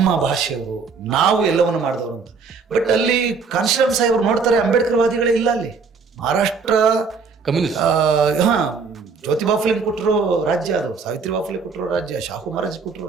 ಭಾಷೆಯವರು, ನಾವು ಎಲ್ಲವನ್ನು ಮಾಡಿದವರು ಅಂತ. ಬಟ್ ಅಲ್ಲಿ ಕಾನ್ಶಿರಾಮ್ ಸಾಹೇಬರು ನೋಡ್ತಾರೆ ಅಂಬೇಡ್ಕರ್ ವಾದಿಗಳೇ ಇಲ್ಲ ಅಲ್ಲಿ. ಮಹಾರಾಷ್ಟ್ರ ಜ್ಯೋತಿಬಾ ಫುಲೆ ಕೊಟ್ಟರು ರಾಜ್ಯ, ಅದು ಸಾವಿತ್ರಿಬಾ ಫುಲೆ ಕೊಟ್ಟರು ರಾಜ್ಯ, ಶಾಹು ಮಹಾರಾಜ್ ಕೊಟ್ಟರು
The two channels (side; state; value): left; quieter; 5.0 dB